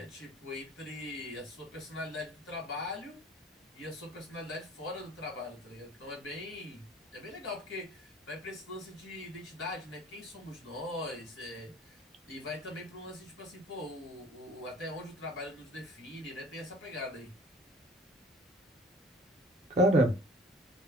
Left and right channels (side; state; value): both; normal; correlation 0.49